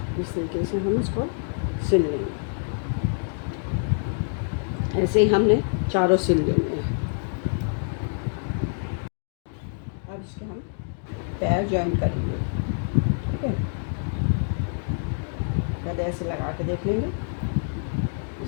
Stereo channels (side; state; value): right; silent; digital silence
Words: इस तरीके से हम इसको सिल लेंगे। ऐसे ही हमने चारों सिल लेने हैं। अब इसके हम पैर ज्वाइन करेंगे। ठीक है, पहले ऐसे लगा के देख लेंगे,